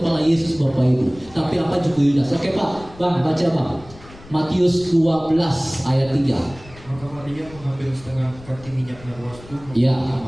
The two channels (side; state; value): left; noise; rumble, 20 dB below the sound